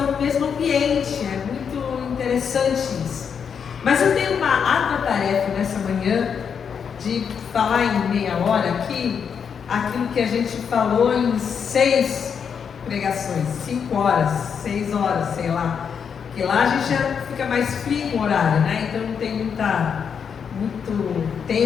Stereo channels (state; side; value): quieter; right; 7.0 dB